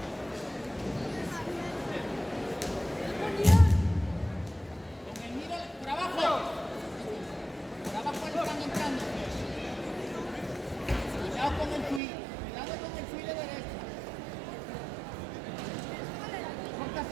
Con el miro por abajo. Por abajo le están entrando. Cuidado con el fui de derecha.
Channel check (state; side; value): drops out; left; at 12.0 s